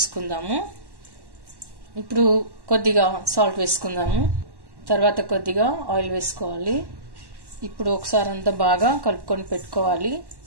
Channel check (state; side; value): late; left; 1.1 ms